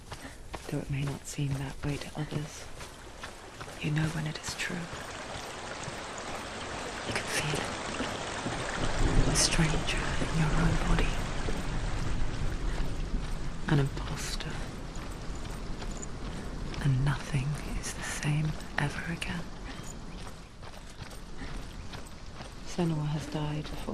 Though it may not seem that way to others, you know when it is true. You can feel it. A stranger in your own body. An imposter. And nothing is the same ever again. Senua has died before.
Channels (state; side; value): identical; both; correlation 1.00